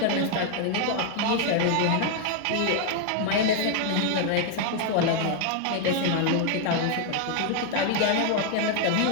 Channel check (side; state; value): both; different; correlation 0.00